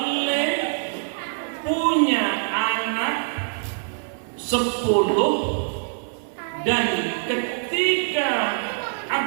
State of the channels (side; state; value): left; silent; 63 dB below the other